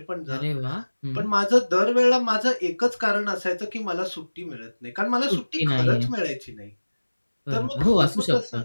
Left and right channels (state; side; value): inverted; both; correlation -1.00